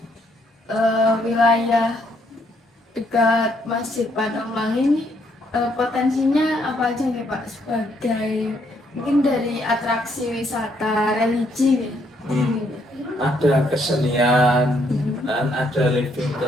wilayah dekat Masjid Patok Melangi ini, potensinya apa aja nih Pak, sebagai mungkin dari atraksi wisata religi gitu. Ada kesenian dan ada living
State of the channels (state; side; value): normal; both; correlation 0.71